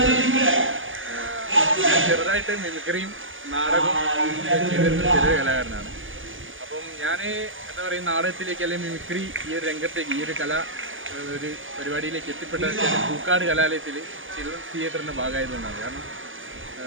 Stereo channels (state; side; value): late; left; 0.58 ms